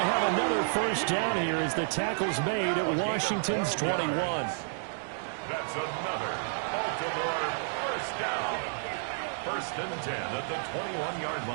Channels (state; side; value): silent; left; digital silence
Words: have another first down here as the tackle's made at Washington's 21. That's another Baltimore first down. First and 10 at the 21-yard